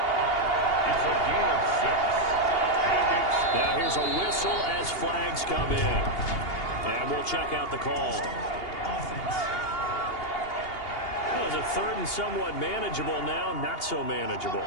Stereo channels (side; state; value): right; late; 2.8 ms